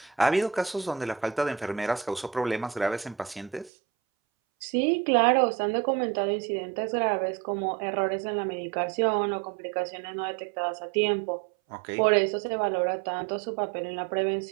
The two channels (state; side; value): drops out; left; at 3.7 s